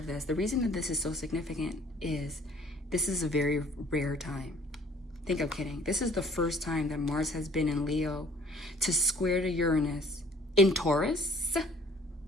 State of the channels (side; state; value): both; normal; correlation 0.55